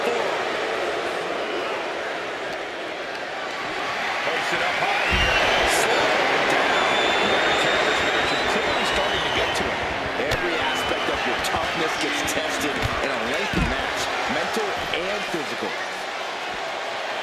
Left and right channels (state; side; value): identical; both; correlation 1.00